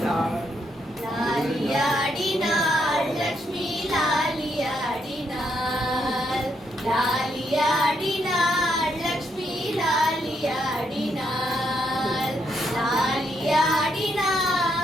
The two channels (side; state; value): both; normal; correlation 0.77